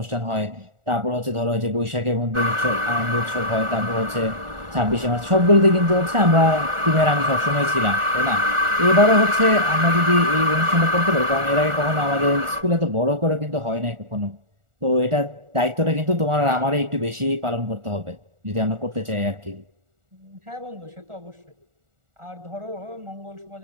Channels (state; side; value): late; left; 1.4 ms